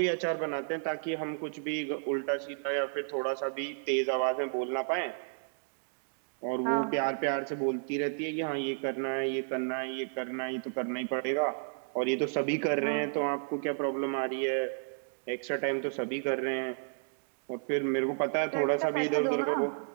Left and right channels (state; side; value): silent; left; digital silence